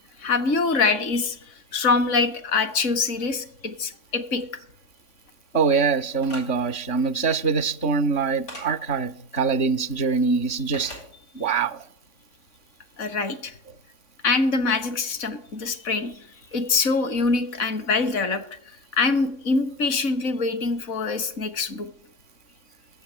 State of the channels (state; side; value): late; right; 3.6 ms